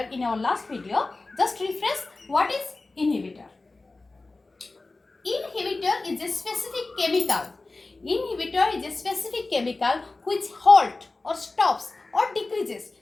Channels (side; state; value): right; quieter; 3.3 dB